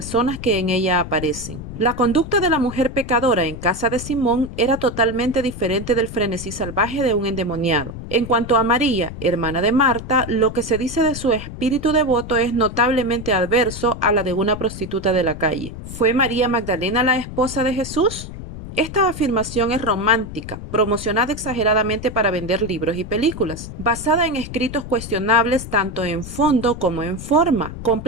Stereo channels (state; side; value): noise; left; rumble, 10 dB below the sound